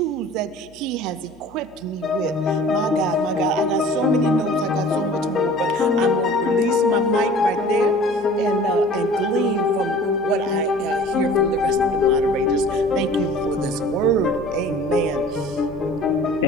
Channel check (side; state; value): right; noise; hum, 26 dB below the sound